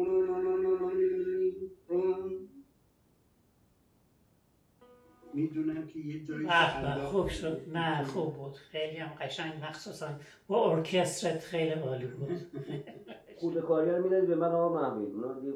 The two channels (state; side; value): identical; both; correlation 1.00